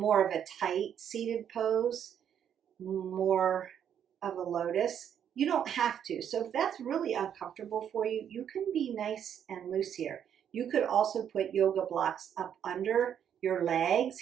of a tight seated pose, more of a lotus. You don't have to. So if that's really uncomfortable for you, you can be nice and loose here. You could also put yoga blocks up under your legs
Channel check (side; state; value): left; quieter; 9.0 dB